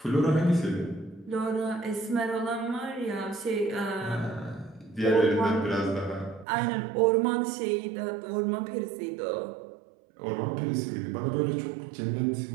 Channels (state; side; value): drops out; left; at 6.5 s